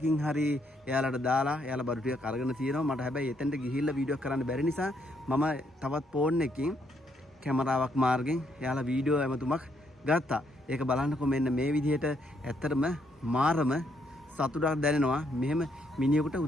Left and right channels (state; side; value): normal; both; correlation 0.73